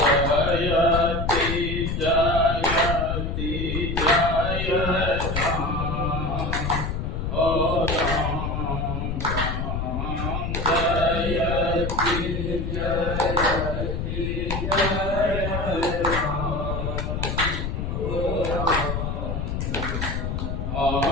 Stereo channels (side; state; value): left; noise; rumble, 2 dB below the sound